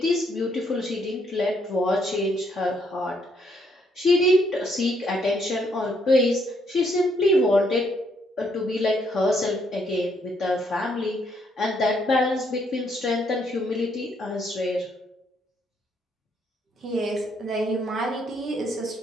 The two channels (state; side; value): normal; both; correlation 0.72